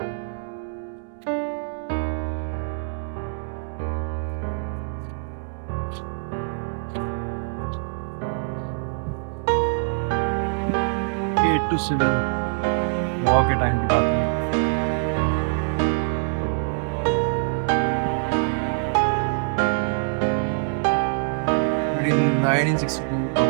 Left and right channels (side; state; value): left; silent; 62 dB below the other